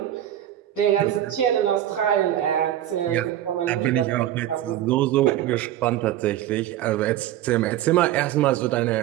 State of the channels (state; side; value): quieter; left; 12.4 dB